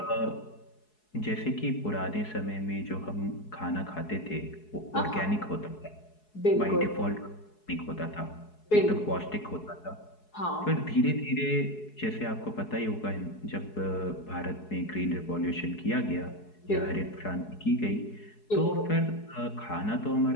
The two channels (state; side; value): late; right; 4.7 ms